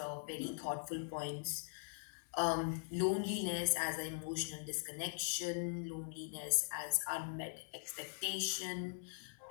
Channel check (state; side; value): silent; right; digital silence